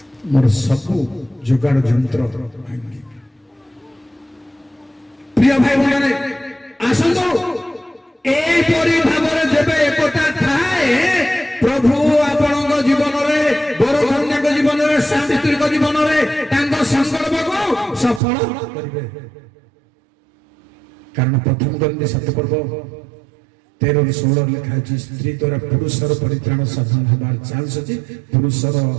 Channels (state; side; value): drops out; left; at 18.2 s